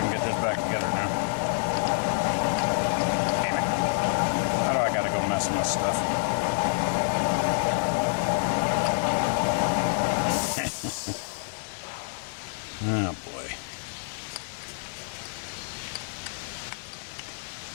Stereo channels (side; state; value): right; silent; 60 dB below the other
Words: can get this back together now. Damn it. How do I gotta go messing with stuff? Oh boy.